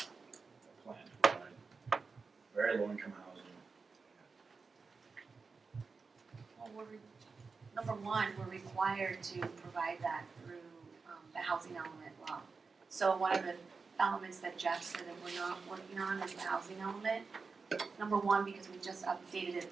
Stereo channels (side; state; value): left; quieter; 4.6 dB